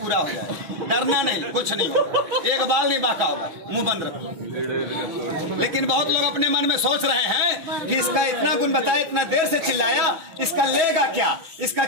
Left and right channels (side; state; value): left; late; 6.1 ms